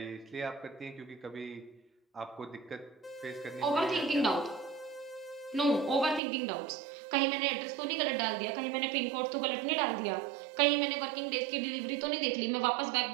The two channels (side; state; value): left; drops out; at 6.2 s